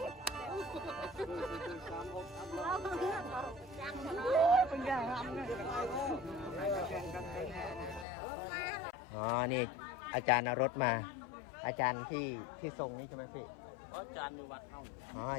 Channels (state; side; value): drops out; right; at 8.1 s